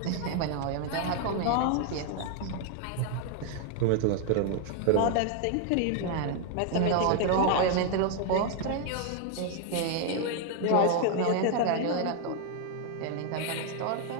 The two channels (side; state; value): both; different; correlation 0.00